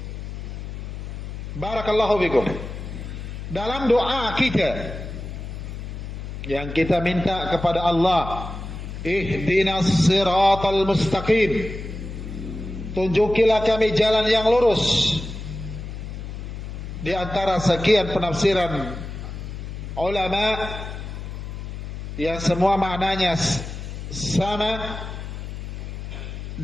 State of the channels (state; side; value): noise; left; hum, 8 dB below the sound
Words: Barakallahu fikum. Dalam doa kita yang kita minta kepada Allah, ihdinas siratal mustaqim, tunjukilah kami jalan yang lurus. Di antara sekian penafsiran ulama yang semua maknanya sama,